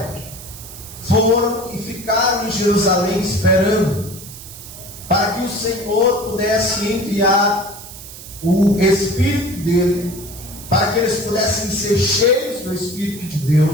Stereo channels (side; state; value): right; noise; hiss, 15 dB below the sound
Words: foram e ficaram em Jerusalém esperando para que o Senhor pudesse enviar o Espírito dele, para que eles pudessem ser cheios do Espírito de